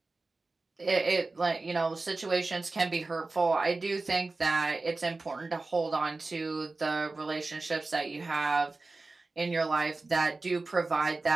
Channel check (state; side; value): quieter; left; 3.5 dB